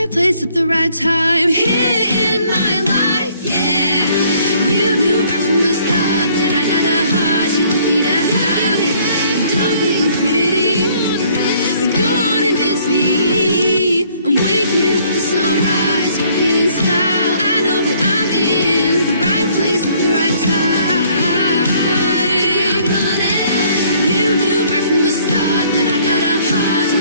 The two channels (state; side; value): inverted; both; correlation -0.62